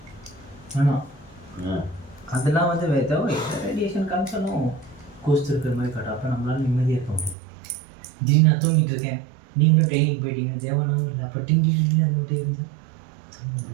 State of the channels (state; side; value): drops out; left; at 7.4 s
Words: அதெல்லாம் வந்து ஏதோ ரேடியேஷன் கன்சர்னும் கோஸ்ட் இருக்கிற மாதிரி காட்டும். அப்போ நம்மளால நிம்மதியாக இருக்க முடியும். திடீர்னு நான் தூங்கிட்டு இருக்கேன், நீங்களும் ட்ரைனிங் போயிட்டீங்க, தேவனாவும் இல்லை. அப்போ டிங்கி அது மட்டும் இருந்து